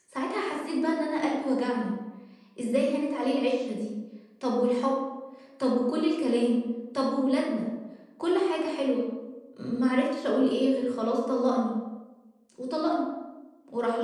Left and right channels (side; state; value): both; identical; correlation 1.00